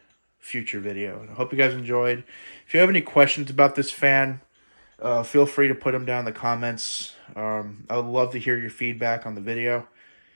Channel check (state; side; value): inverted; both; correlation -1.00